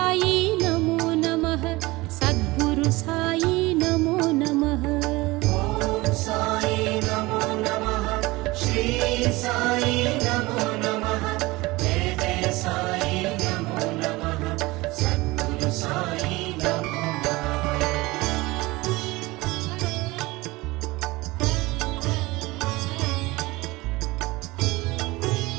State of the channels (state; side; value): quieter; left; 21.3 dB